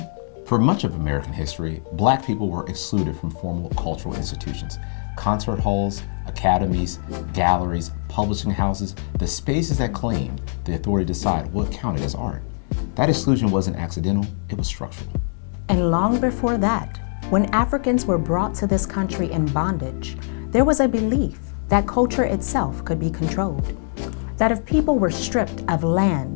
For much of American history, Black people were excluded from formal cultural institutions. Concert halls, academies, galleries, publishing houses, the spaces that claimed the authority to decide what counted as art. That exclusion wasn't accidental, it was structural. And long before that, when Africans were brought to this country in bondage, there was a belief that culture itself could be controlled. That if people were stripped of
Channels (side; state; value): right; silent; digital silence